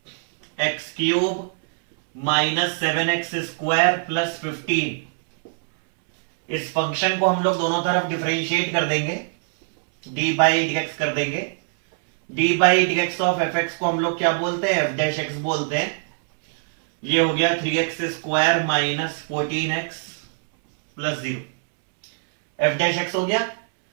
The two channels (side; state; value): left; silent; 64 dB below the other